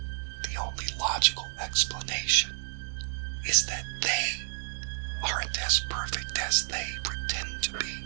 The only logical explanation is that they aren't as perfect as they pretend to be,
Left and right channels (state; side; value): silent; left; digital silence